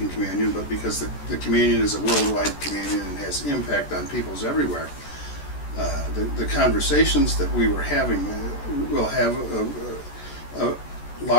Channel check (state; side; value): late; right; 14 ms